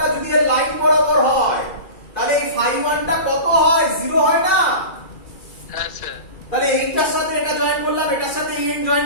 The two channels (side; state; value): right; late; 2.4 ms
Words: যদি এর লাইন বরাবর হয়, তাহলে এই φ1 টা কত হয়? 0 হয় না? হ্যাঁ স্যার। তাহলে এইটার সাথে এটা জয়েন করলাম, এটার সাথে এই এন্ড